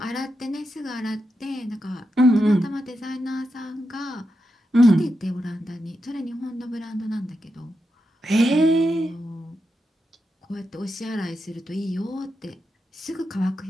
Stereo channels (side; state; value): both; normal; correlation 0.87